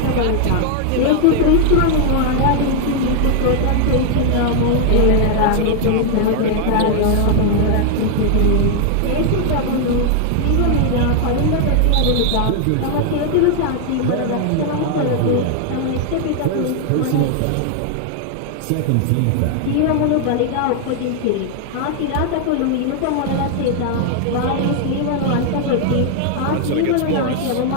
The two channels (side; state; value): both; different; correlation 0.00